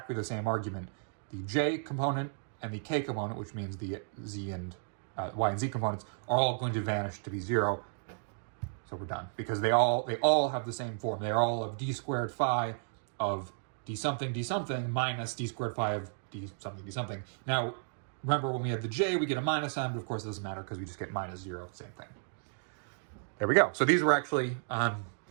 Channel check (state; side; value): silent; left; digital silence